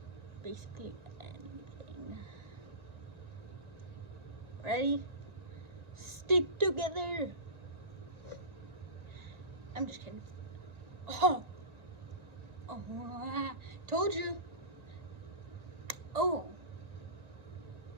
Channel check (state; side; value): late; left; 1.9 ms